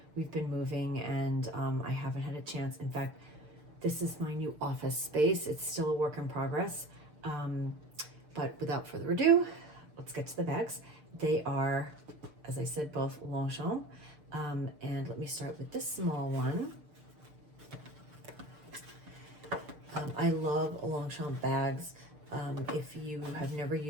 we've been moving and I haven't had a chance. In fact, this is my new office space. It's still a work in progress. But without further ado, let's get to the bags. They are, as I said, both Longchamp. And let me start with this small one. I love Longchamp bags. If you have never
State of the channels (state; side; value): late; left; 6.7 ms